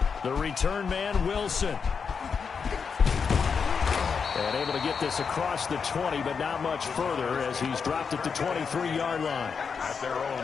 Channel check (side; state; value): right; quieter; 5.9 dB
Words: The return man, Wilson. And able to get this across the 20, but not much further as he's dropped at the 23-yard line. At their own